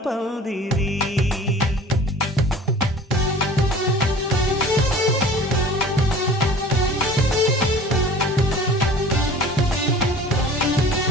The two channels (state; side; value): normal; both; correlation 0.44